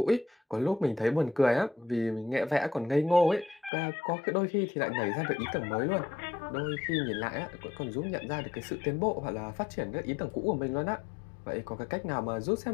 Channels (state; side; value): drops out; right; at 3.7 s